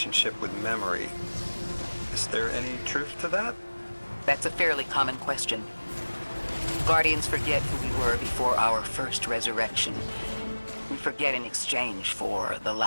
with memory. Is there any truth to that? That's a fairly common question. Guardians forget who we were before our first resurrection. We forget in exchange for the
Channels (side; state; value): both; inverted; correlation -1.00